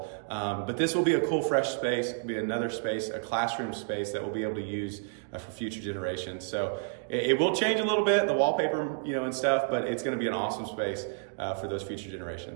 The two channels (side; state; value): left; silent; digital silence